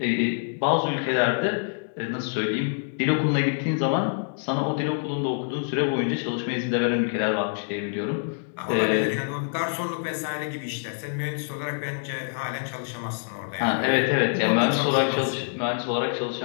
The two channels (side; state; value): right; silent; digital silence